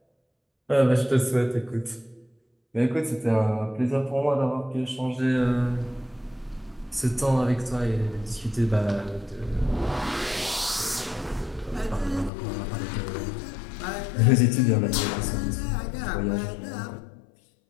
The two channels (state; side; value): drops out; right; at 12.3 s